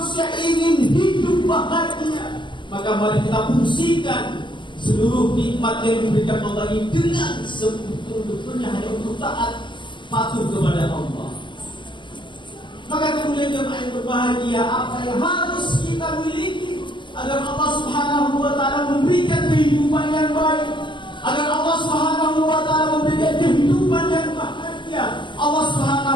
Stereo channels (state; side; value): late; right; 0.23 ms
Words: ingin hidup bahagia, maka mari kita fungsikan seluruh nikmat yang diberikan Allah ini dengan sebetul-betulnya hanya untuk taat patuh kepada Allah. Maka kemudian jemaah yang berbahagia, apa yang harus kita miliki agar Allah Subhanahu wa Ta'ala memberikan kehidupan yang baik, agar Allah Subhanahu wa Ta'ala memberikan kehidupan yang bahagia, Allah